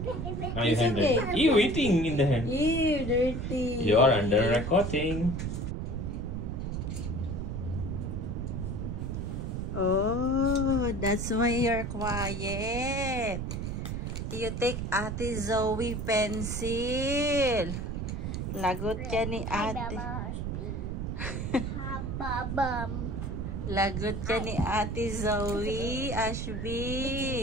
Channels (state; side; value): noise; right; rumble, 3 dB below the sound